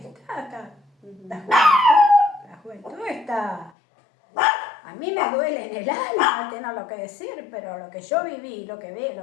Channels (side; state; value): right; drops out; at 3.7 s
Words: Ujú. la juventud está... A mí me duele en el alma tener lo que decir, pero lo que yo viví, lo que